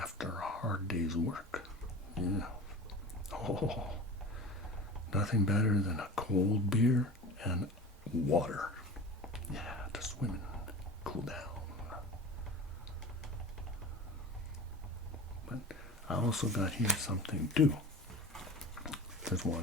a hard day's work. Yeah. Oh, nothing better than a cold beer and water. Yeah, to swim and cool down. But I also got here something too. Just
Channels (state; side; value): normal; both; correlation 0.34